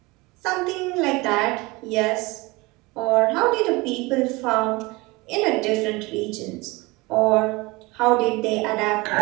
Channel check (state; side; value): quieter; left; 23.6 dB